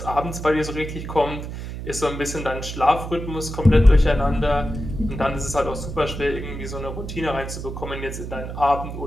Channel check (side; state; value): right; noise; hum, 8 dB below the sound